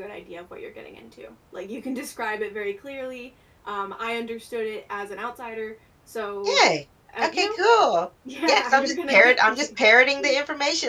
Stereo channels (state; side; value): identical; both; correlation 1.00